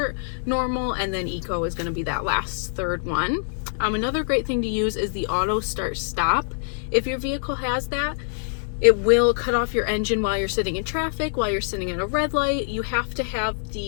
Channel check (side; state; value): right; silent; digital silence